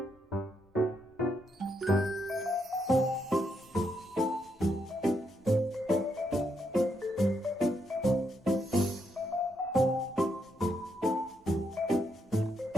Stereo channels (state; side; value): normal; both; correlation 0.78